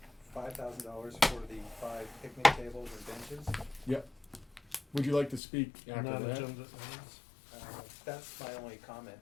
$5,000 for the 5 picnic tables and benches. Yep. Would you like to speak after that? Non-agenda items. That's my only comment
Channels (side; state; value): right; drops out; at 5.4 s